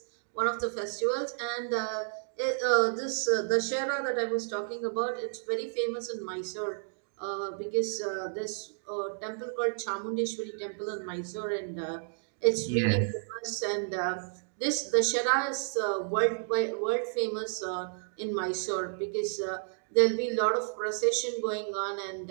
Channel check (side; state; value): left; silent; digital silence